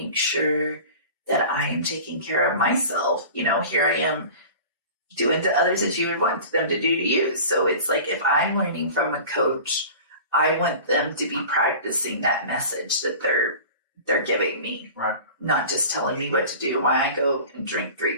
sure that I am taking care of myself. Here I am doing to others as you would want them to do to you. So it's like, if I'm learning from a coach, I want them to be practicing that message that they're giving me. Right. Not just telling me what to do while I go and drink 3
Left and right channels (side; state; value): both; inverted; correlation -0.38